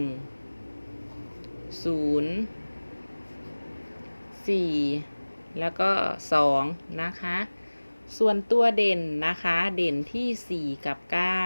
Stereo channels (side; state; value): both; inverted; correlation -1.00